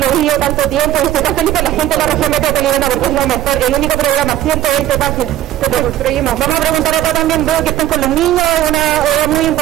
he vivido tanto tiempo y estoy tan feliz con la gente de la región metropolitana porque es lo mejor. El único programa, 120 páginas que construimos. Vamos a preguntar acá también, veo que están con los niños, una hora muy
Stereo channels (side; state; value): left; quieter; 13.0 dB